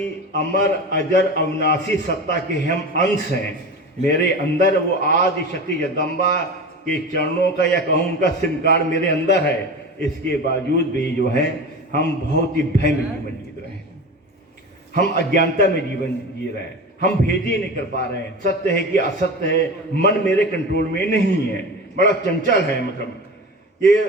अमर अजर अविनाशी सत्ता के हम अंश हैं। मेरे अंदर वो आदि शक्ति जगदम्बा के चरणों का या कहूँ उनका सिम कार्ड मेरे अंदर है। इसके बावजूद भी जो है हम बहुत ही भय में जीवन जी रहे हैं, हम अज्ञानता में जीवन जी रहे हैं, हम भेद ही नहीं कर पा रहे हैं। सत्य है कि असत्य है, मन मेरे कंट्रोल में नहीं है, बड़ा चंचल है। मतलब ये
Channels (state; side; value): normal; both; correlation 0.29